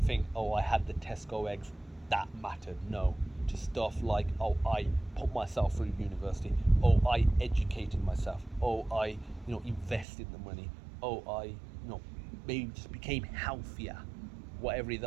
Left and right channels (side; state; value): left; drops out; at 10.1 s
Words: think, oh, I had the Tesco eggs, that mattered. No, to stuff like, oh, I put myself through university, oh, I educated myself, oh, I invested the money, oh, I maybe just became healthier. Whatever it is,